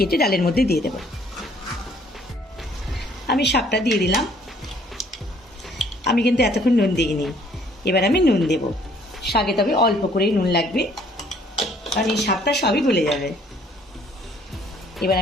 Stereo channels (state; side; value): normal; both; correlation 0.61